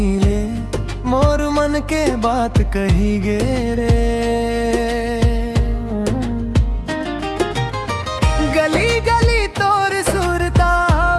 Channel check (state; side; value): identical; both; correlation 1.00